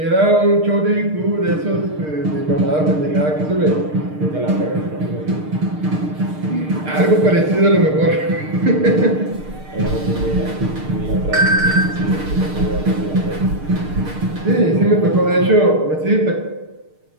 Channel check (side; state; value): left; late; 6.6 ms